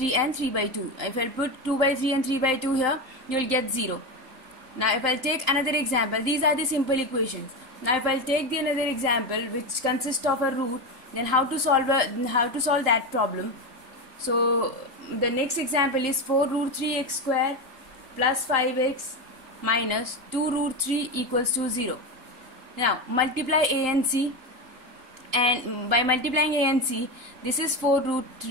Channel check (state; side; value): late; left; 3.8 ms